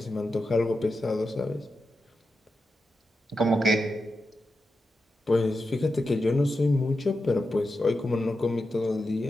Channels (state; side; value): normal; both; correlation 0.89